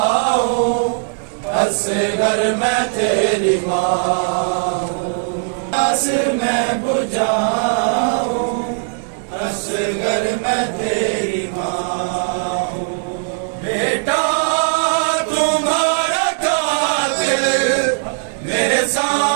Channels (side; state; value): left; silent; 67 dB below the other